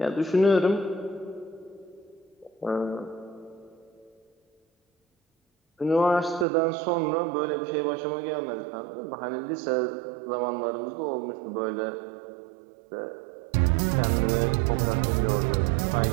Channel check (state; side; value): drops out; left; at 6.5 s